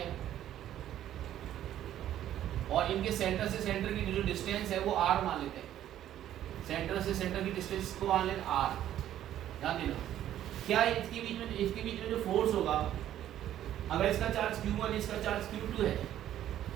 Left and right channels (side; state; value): left; quieter; 11.9 dB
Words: और इनके सेंटर से सेंटर की जो डिस्टेंस है वो r मान लेते हैं, सेंटर से सेंटर की डिस्टेंस को मान लेते r। ध्यान देना, क्या इसके बीच में जो फोर्स होगा, अगर इसका चार्ज q1 इसका चार्ज q2 है,